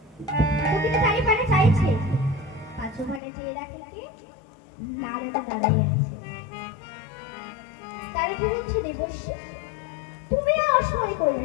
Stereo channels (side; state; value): right; drops out; at 3.2 s